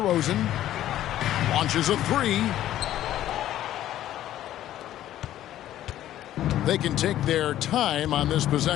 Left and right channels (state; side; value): quieter; right; 12.8 dB